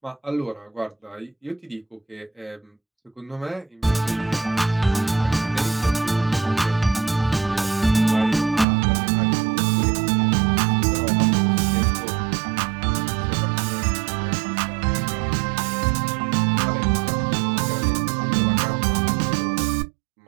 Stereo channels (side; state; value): left; drops out; at 8.7 s